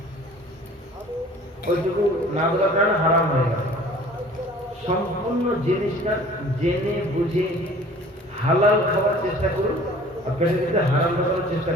ওইটুকু না দেওয়ার কারণে হারাম হয়ে গেল। সম্পূর্ণ জিনিসটা জেনে বুঝে হালাল খাওয়ার চেষ্টা করুন, আর পেটের ভিতরে হারাম খাওয়ার চেষ্টা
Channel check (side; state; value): both; normal; correlation 0.48